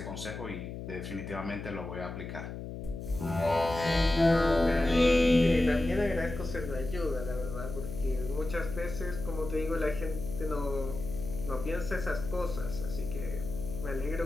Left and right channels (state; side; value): noise; left; hum, 8 dB below the sound